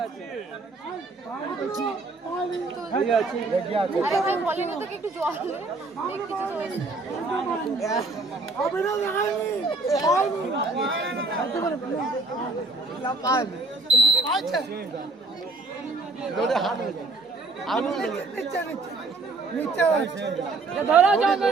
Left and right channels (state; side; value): quieter; left; 3.4 dB